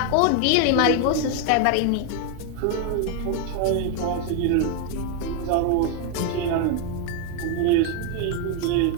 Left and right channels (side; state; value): both; different; correlation 0.01